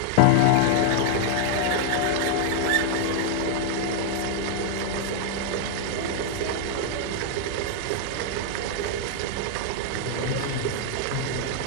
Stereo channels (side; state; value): both; different; correlation -0.01